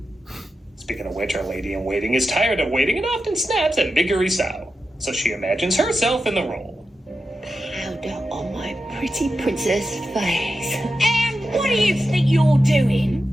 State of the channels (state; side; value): normal; both; correlation 0.90